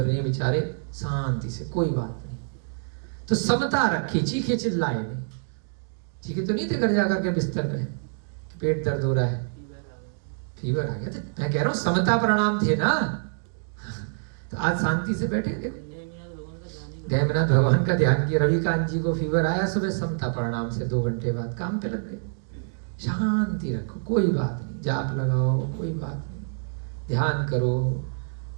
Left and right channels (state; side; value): silent; left; digital silence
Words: रही है बेचारे, शांति से, कोई बात नहीं। तो समता रखी, चीखे चिल्लाए नहीं, चीखे तो नहीं थे घर जाकर के बिस्तर पे कि पेट दर्द हो रहा है, फीवर आ गया, तो मैं कह रहा हूँ समता प्रणाम थे ना। तो आज शांति से बैठे, देखो देवनाथ भगवान का ध्यान किया, रविकांत जी को फीवर आया, सुबह समता प्रणाम से 2 घंटे बाद काम पे लग गए। शांति रखो, कोई बात नहीं, जाप लगाओ, कोई बात नहीं, ध्यान करो,